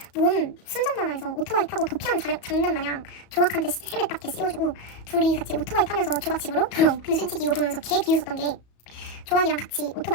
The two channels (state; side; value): late; right; 34 ms